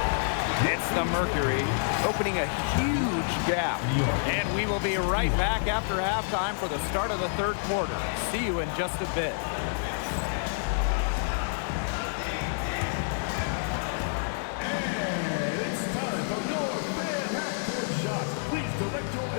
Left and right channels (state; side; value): silent; right; digital silence